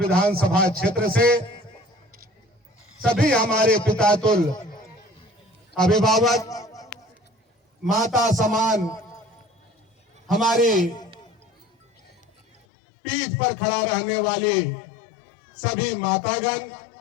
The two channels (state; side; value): drops out; right; at 12.6 s